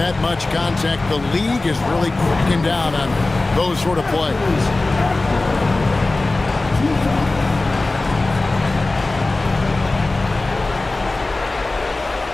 much contact. The league is really cracking down on those sort of plays.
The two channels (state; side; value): quieter; right; 3.1 dB